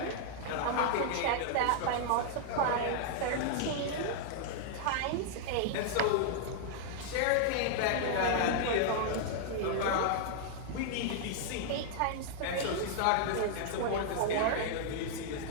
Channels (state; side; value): different; both; correlation -0.01